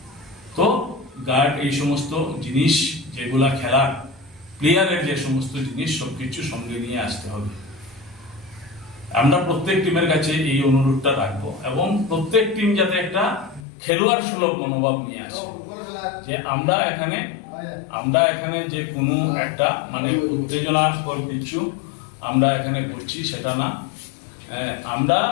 তো গার্ড, এই সমস্ত জিনিস যেগুলা খেলার প্লেয়ারের যে সমস্ত জিনিস সবকিছু সঙ্গে নিয়ে আসতে হবে। আমরা প্রত্যেক টিমের কাছে এই অনুরোধটা রাখবো এবং প্রত্যেক টিম যাতে একটা খেলোয়াড় সুলভ মনোভাব নিয়ে আসে, যে আমরা এখানে যে কোনো একটা মানে উত্তেজনাকর কিছু আমরা এখানে করছি সেটা না।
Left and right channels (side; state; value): right; drops out; at 13.6 s